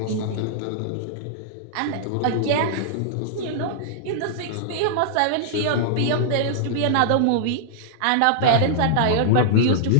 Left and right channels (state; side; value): different; both; correlation -0.02